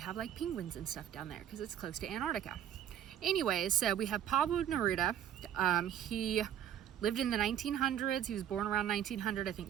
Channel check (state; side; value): quieter; left; 10.2 dB